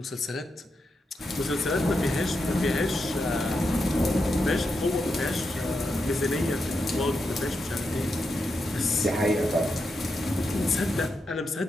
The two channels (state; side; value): normal; both; correlation 0.85